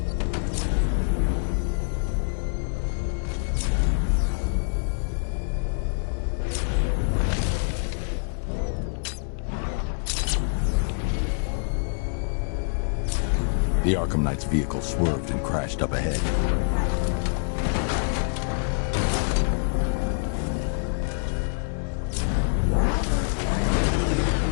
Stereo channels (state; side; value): silent; right; 61 dB below the other